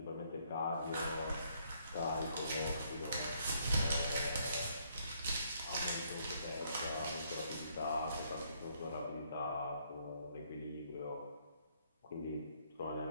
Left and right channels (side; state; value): both; inverted; correlation -0.69